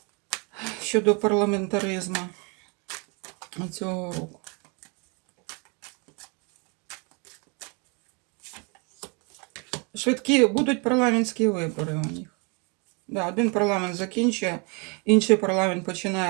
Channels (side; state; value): left; quieter; 33.0 dB